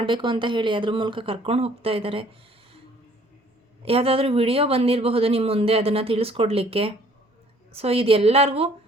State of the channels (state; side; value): normal; both; correlation 0.58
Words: ಅಂತ ಹೇಳಿ ಅದ್ರ ಮೂಲಕ ಕರ್ಕೊಂಡು ಹೋಗ್ತಾ ಇದ್ದಾರೆ. ಯಾವುದಾದ್ರೂ ವಿಡಿಯೋ ಬಂದಿರಬಹುದು ನಿಮ್ಮ ಮುಂದೆ ಅದನ್ನು ತಿಳಿಸ್ಕೊಡ್ಲಿಕ್ಕೆ. ಸೊ ಇದೆಲ್ಲರಿಗೂ